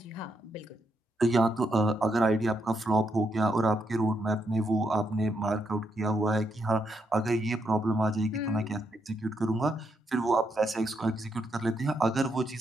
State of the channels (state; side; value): normal; both; correlation 0.79